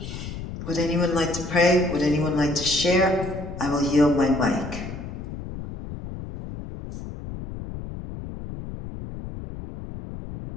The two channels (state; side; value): noise; left; rumble, 9 dB below the sound